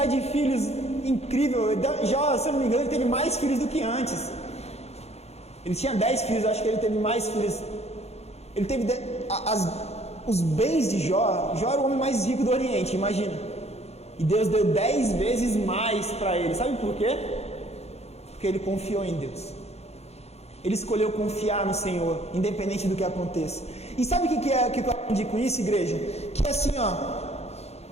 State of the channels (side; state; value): right; late; 0.31 ms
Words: de filhos incrível. Jó, se eu não me engano, ele teve mais filhos do que antes. Ele tinha 10 filhos, acho que ele teve mais filhos. Ele teve os bens de Jó. Jó era o homem mais rico do Oriente, imagina. E Deus deu 10 vezes mais para ele. Sabe por quê? Porque ele confiou em Deus. Ele escolheu confiar no Senhor, independente do que aconteça. E sabe o que eu aprendi com isso, igreja? Que é assim,